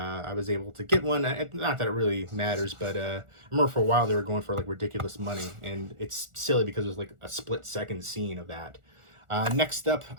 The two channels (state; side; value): late; left; 1.4 ms